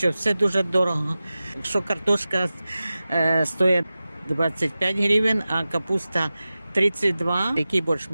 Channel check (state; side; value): inverted; both; correlation -0.95